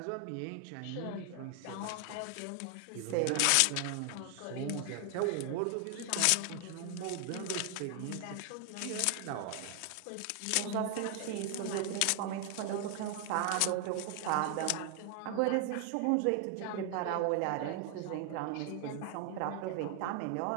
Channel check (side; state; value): both; different; correlation 0.00